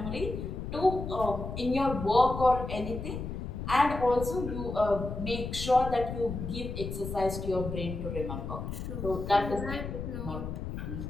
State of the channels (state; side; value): noise; left; rumble, 6 dB below the sound